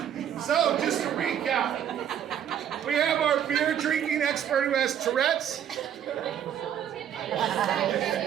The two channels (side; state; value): left; quieter; 9.6 dB